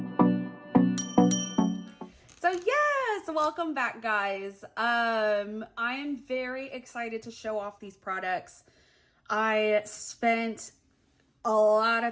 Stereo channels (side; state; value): both; identical; correlation 1.00